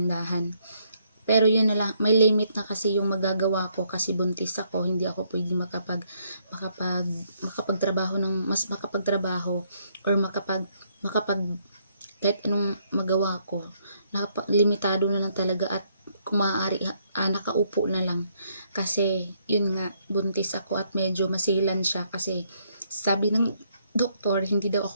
Pero yun na lang, may limit na kasi yung magagawa ko kasi buntis ako, hindi ako pwedeng makapagtrabaho or kahit anong magawa ko. Limitado na lang talaga at kung maaari, nakaupo na lang. Kasi yun nga, buntis ako at medyo masilan siya kasi sabi ng doktor, hindi daw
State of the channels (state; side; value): inverted; both; correlation -0.71